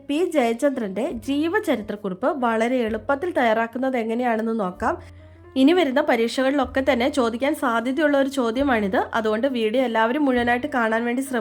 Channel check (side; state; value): both; identical; correlation 1.00